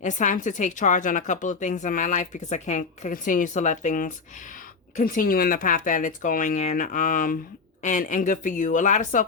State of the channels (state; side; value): quieter; right; 4.7 dB